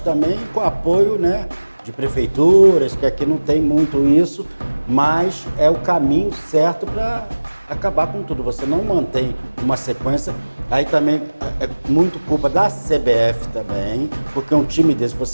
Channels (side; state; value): both; inverted; correlation -1.00